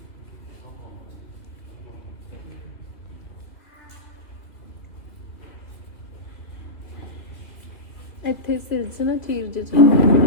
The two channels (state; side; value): late; right; 2.6 ms